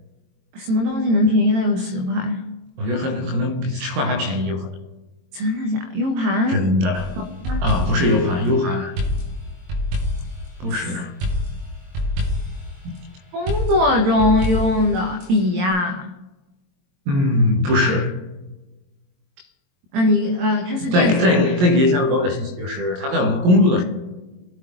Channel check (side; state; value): left; late; 22 ms